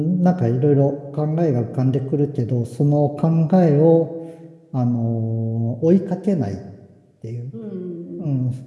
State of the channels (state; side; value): identical; both; correlation 1.00